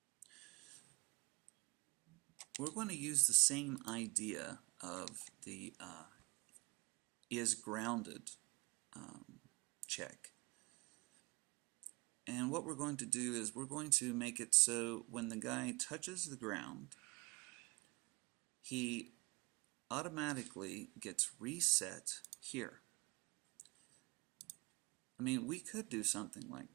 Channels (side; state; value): left; quieter; 26.6 dB